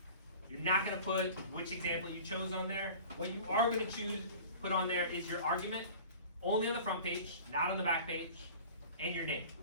You're not gonna put which example you chose on there. What you are gonna put on there is your argument, only on the front page, not on the back page, and your name,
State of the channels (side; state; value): both; inverted; correlation -0.41